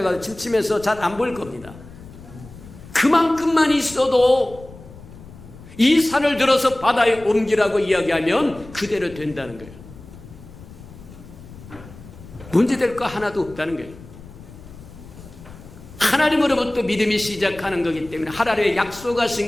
침침해서 잘 안 보일 겁니다. 그만큼만 있어도 이 산을 들어서 바다에 옮기라고 이야기하면 그대로 된다는 거예요. 문제될 거 하나도 없다는 거예요. 하나님으로부터 믿음이 시작하는 거기 때문에 하나님의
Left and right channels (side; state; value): left; noise; rumble, 18 dB below the sound